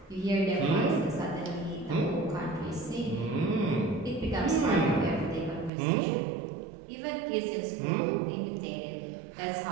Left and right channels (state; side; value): drops out; left; at 5.7 s